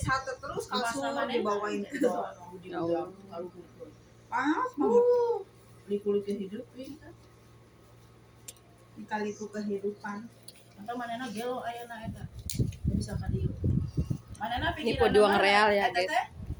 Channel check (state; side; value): identical; both; correlation 1.00